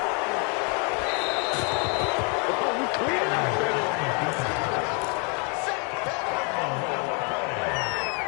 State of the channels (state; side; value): quieter; right; 34.3 dB